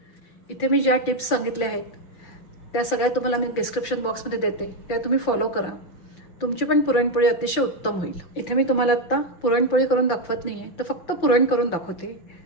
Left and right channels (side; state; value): right; late; 5.9 ms